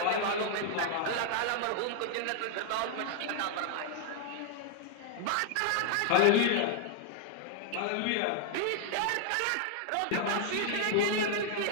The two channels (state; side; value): different; both; correlation 0.00